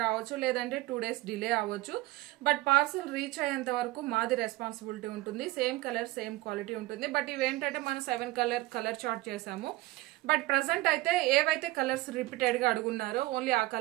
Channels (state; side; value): quieter; left; 19.0 dB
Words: రావచ్చు, లేదంటే 2 days డిలే అవ్వచ్చు. బట్ పార్సల్ రీచ్ అయ్యేంత వరకు మాది రెస్పాన్సిబిలిటీ ఉంటుంది. సేమ్ కలర్ సేమ్ క్వాలిటీ ఉంటుంది. బట్ ఇవేంటంటే మనం 7 కలర్ చార్ట్ చేసాము. బట్ ప్రెసెంట్ అయితే ఏవైతే కలర్స్ రిపీటెడ్ గా అడుగున్నారో ఓన్లీ ఆ